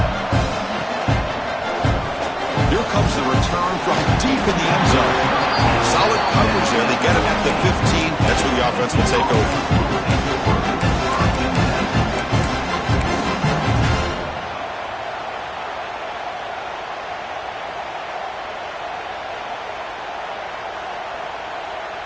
The return from deep in the end zone. Solid coverage there. They get it at the 15. That's where the offense will take over.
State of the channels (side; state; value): both; identical; correlation 1.00